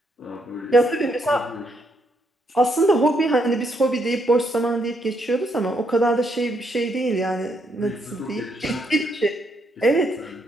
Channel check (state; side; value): normal; both; correlation 0.75